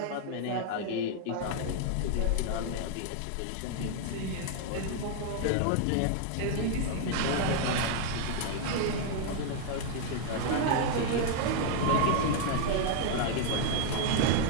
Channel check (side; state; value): both; different; correlation 0.00